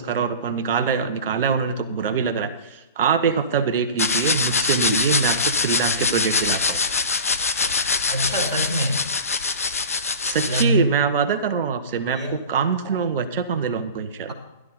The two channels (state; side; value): inverted; both; correlation -0.34